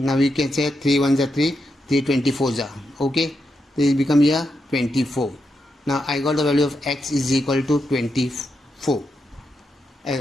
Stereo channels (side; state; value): both; normal; correlation 0.84